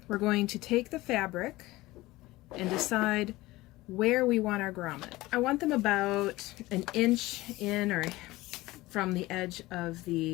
we're going to take the fabric and decide where we want our grommet. I want them about an inch in or from the edge of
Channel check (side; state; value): right; quieter; 19.1 dB